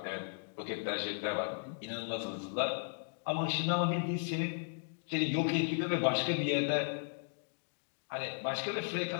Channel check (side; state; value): right; silent; 54 dB below the other